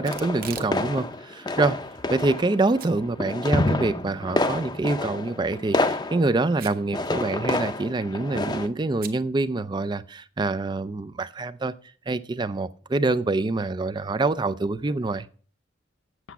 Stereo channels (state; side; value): normal; both; correlation 0.63